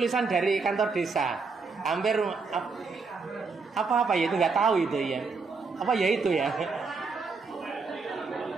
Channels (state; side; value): quieter; left; 4.5 dB